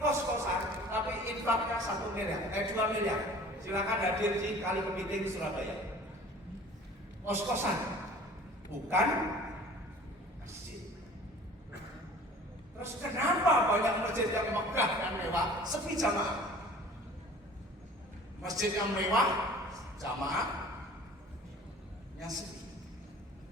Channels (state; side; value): normal; both; correlation 0.46